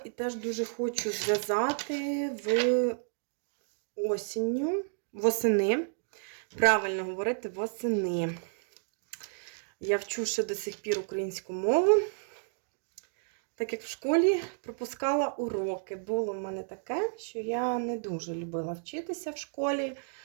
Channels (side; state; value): left; silent; digital silence